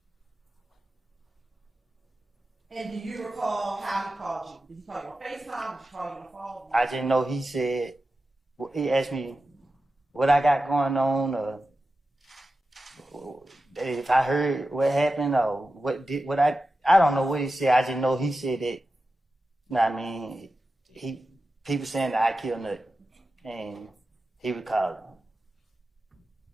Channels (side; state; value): both; normal; correlation 0.92